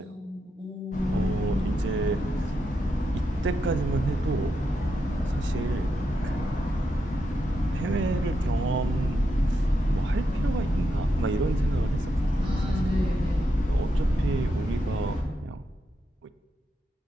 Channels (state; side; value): normal; both; correlation 0.84